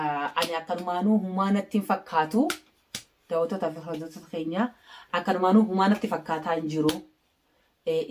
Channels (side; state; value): both; identical; correlation 1.00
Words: Ani akkanumaanuu humaanatti hin fakkaatu. Daawwattootaa fi hordoftoota keenya akkanumaanuu humaanatti fakkaataa hin jiru.